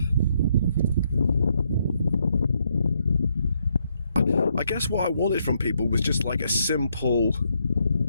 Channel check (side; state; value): both; inverted; correlation -0.75